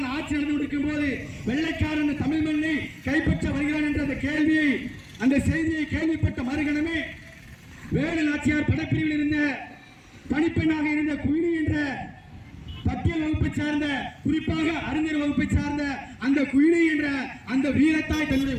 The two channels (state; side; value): identical; both; correlation 1.00